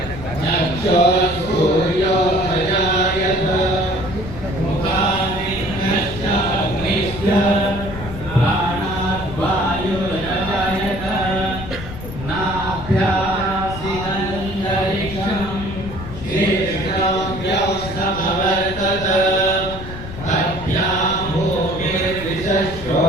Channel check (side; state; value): left; noise; rumble, 11 dB below the sound